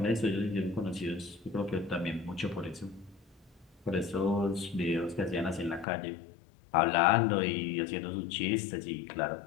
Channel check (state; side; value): drops out; right; at 5.9 s